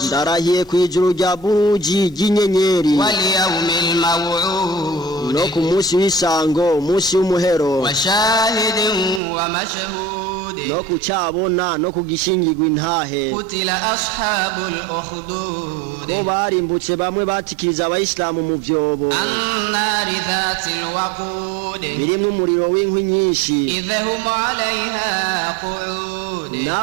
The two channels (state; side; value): drops out; left; at 9.2 s